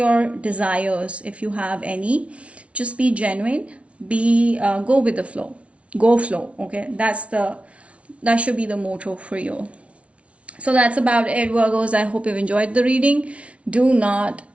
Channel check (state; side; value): late; left; 0.062 ms